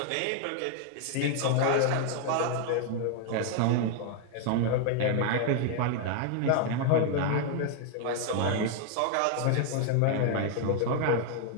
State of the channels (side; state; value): both; different; correlation 0.00